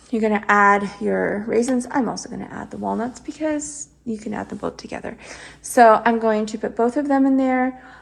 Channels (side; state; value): both; identical; correlation 1.00